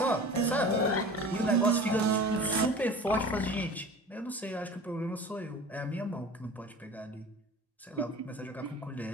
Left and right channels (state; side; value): normal; both; correlation 0.39